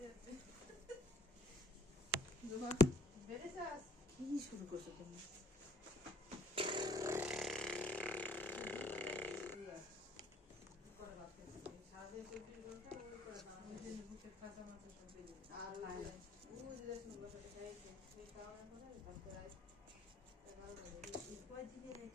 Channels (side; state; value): both; normal; correlation 0.58